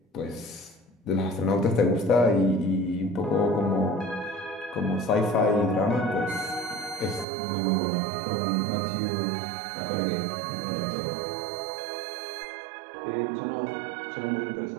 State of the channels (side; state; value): left; drops out; at 7.2 s